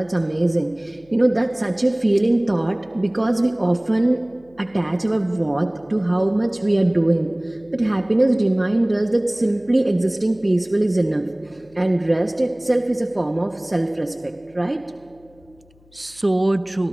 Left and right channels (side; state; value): left; noise; hum, 30 dB below the sound